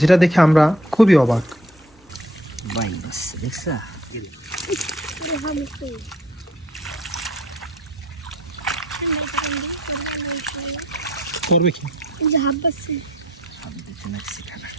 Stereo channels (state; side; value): normal; both; correlation 0.59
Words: দেখে আমরা খুবই অবাক। করবে কি